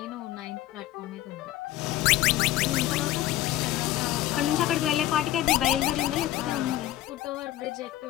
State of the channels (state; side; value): quieter; right; 14.4 dB